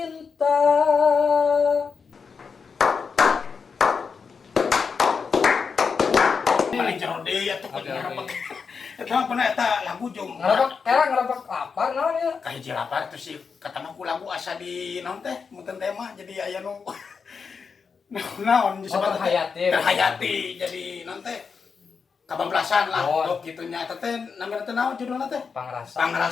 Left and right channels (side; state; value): right; quieter; 5.6 dB